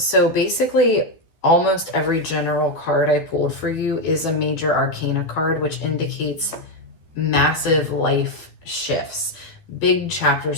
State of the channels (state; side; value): late; right; 12 ms